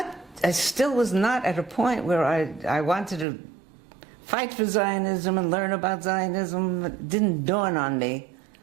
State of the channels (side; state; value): left; drops out; at 3.2 s